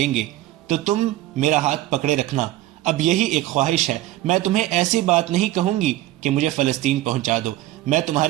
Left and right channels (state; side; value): quieter; left; 15.4 dB